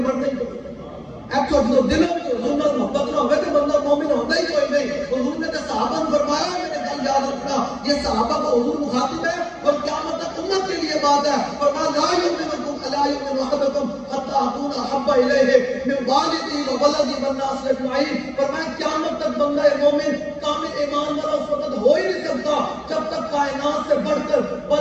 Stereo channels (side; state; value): both; identical; correlation 1.00